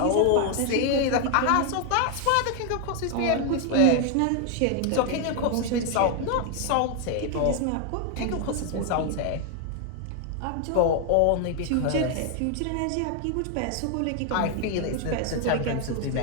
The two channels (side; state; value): both; different; correlation 0.01